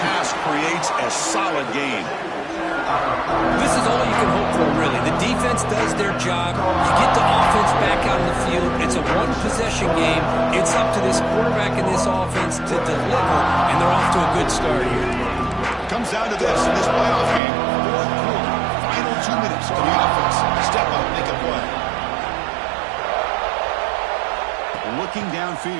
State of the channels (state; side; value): drops out; left; at 17.4 s